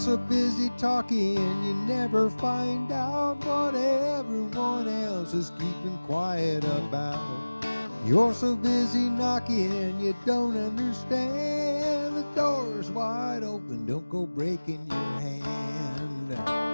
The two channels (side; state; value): both; inverted; correlation -1.00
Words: busy talking, you never find out what everyone else is keeping quiet about. You're so busy knocking, you don't understand. The door's wide open, don't go breaking your hand.